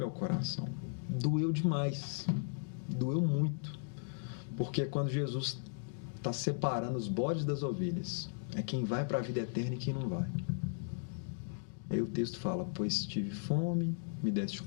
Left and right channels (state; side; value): silent; right; digital silence